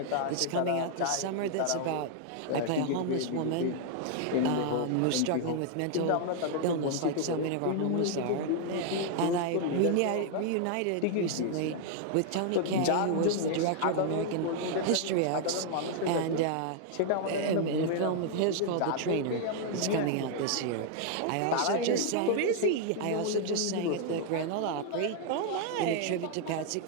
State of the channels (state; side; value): different; both; correlation 0.00